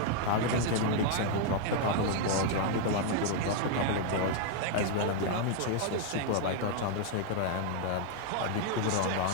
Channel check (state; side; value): different; both; correlation 0.00